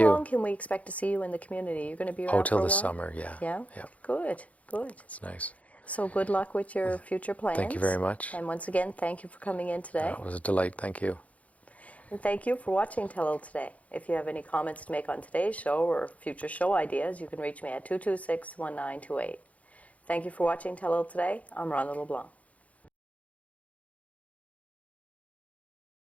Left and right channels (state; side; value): late; right; 0.068 ms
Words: long can we expect to see you in the community? You're going to be around Till for a the while? summer, yeah. Yeah? Yeah. Good. It's nice. So good luck with your future plans. Thank you very much. And once again, thank you for coming in today. It was a delight. Thank you. And thank you for watching Telile today. If you have any comments to make on today's show or future show ideas, you can reach me at 226-1928. Thank you for watching Telile today. I'm Rhonda LeBlanc.